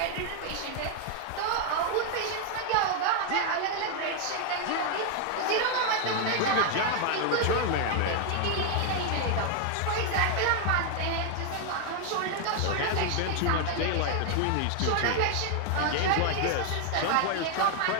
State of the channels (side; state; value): both; different; correlation 0.00